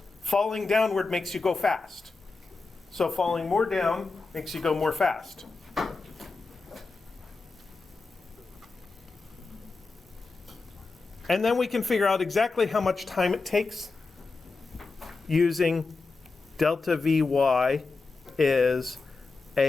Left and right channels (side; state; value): right; quieter; 4.0 dB